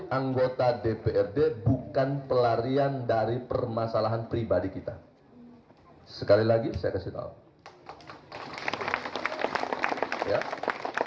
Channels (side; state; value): both; identical; correlation 1.00